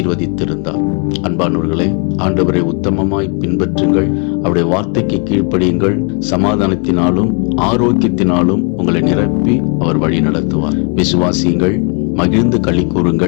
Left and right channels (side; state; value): right; quieter; 36.1 dB